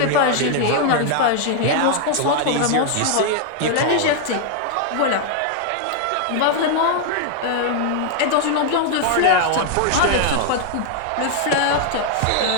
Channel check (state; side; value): different; both; correlation 0.00